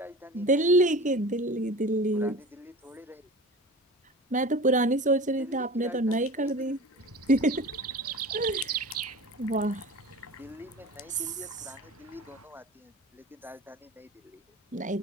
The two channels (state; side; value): normal; both; correlation 0.36